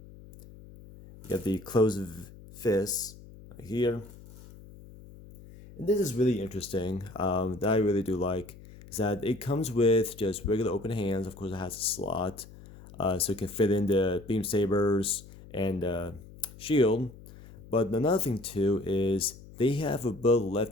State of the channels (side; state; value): left; noise; hum, 19 dB below the sound